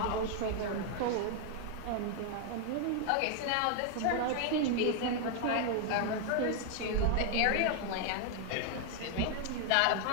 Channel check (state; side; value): different; both; correlation 0.00